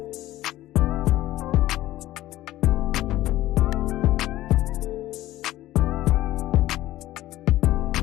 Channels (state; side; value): quieter; right; 15.3 dB